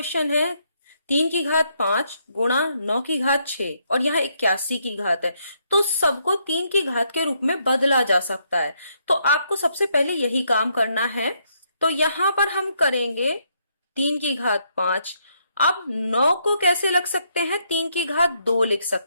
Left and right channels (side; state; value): both; inverted; correlation -0.75